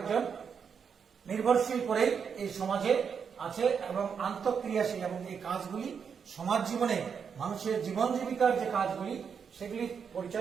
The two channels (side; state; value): left; quieter; 6.7 dB